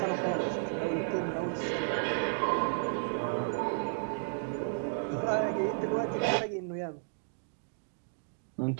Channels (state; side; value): silent; left; digital silence